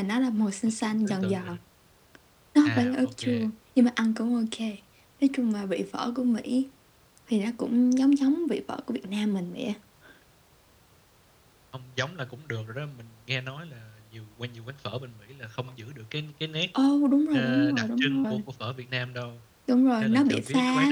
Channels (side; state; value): both; identical; correlation 1.00